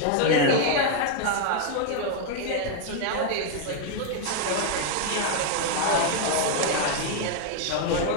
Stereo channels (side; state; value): both; different; correlation 0.00